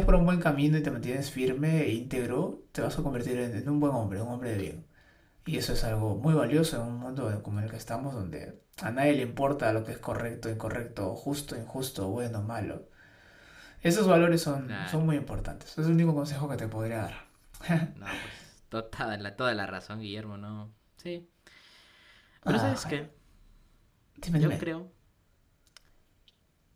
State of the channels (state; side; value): identical; both; correlation 1.00